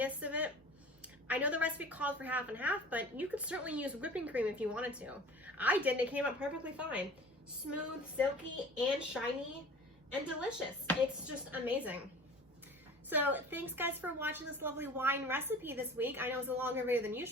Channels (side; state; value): both; normal; correlation 0.42